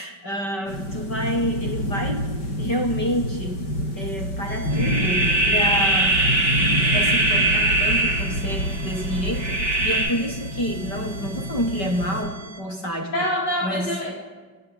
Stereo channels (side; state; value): right; late; 5.2 ms